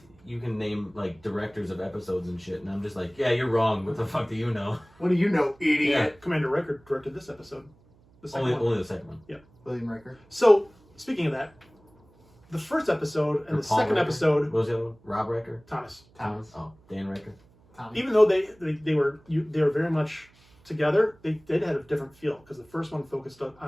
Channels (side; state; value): right; noise; hum, 30 dB below the sound